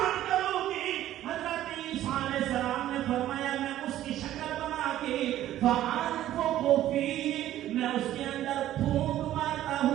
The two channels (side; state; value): left; quieter; 13.1 dB